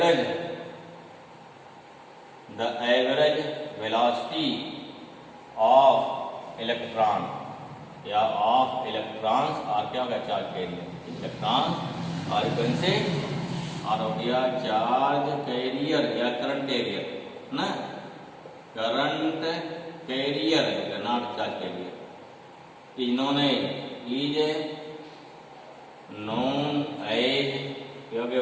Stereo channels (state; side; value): identical; both; correlation 1.00